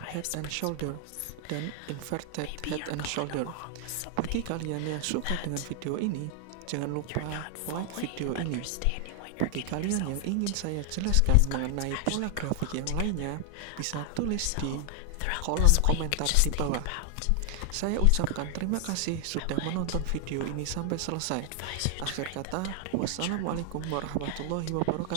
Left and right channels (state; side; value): different; both; correlation 0.00